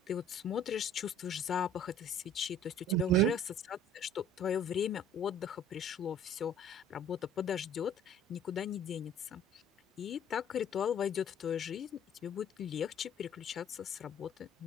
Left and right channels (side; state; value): both; normal; correlation 0.51